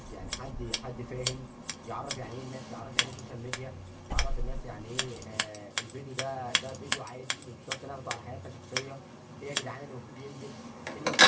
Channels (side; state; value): both; identical; correlation 1.00